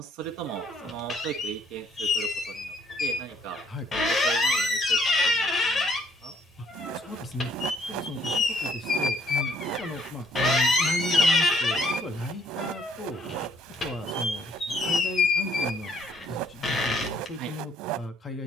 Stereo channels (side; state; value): both; normal; correlation 0.65